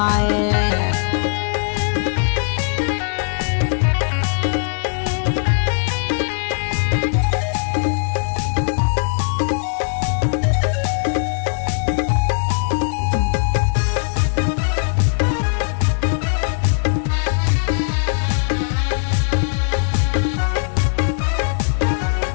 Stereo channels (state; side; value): silent; right; 66 dB below the other